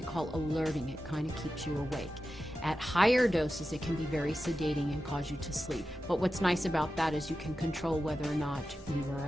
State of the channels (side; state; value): both; normal; correlation 0.92